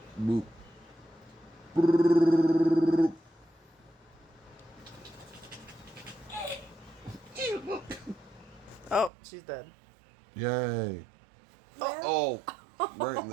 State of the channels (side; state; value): left; drops out; at 9.1 s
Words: Boop. Oh, she's dead. Yay. Oh, right in